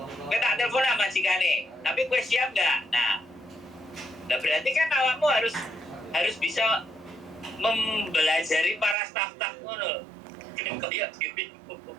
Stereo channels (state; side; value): drops out; left; at 9.0 s